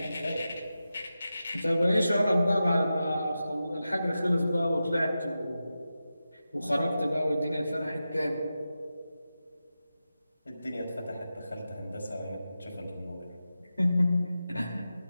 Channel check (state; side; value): inverted; both; correlation -0.92